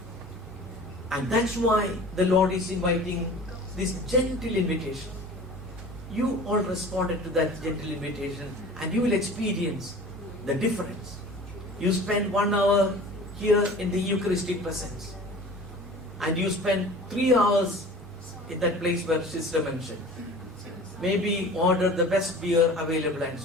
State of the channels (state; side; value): normal; both; correlation 0.41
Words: And that's why the Lord is inviting this gentle invitation. You all responded to that gentle invitation and you will experience the difference. You spend 1 hour here in the Eucharistic presence and you spend 3 hours in that place where Sister mentioned. Maybe order the best beer available and